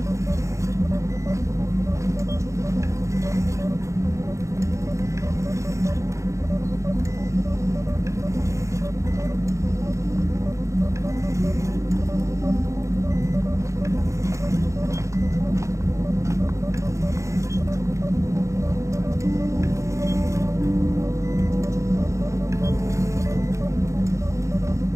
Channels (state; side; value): late; left; 0.15 ms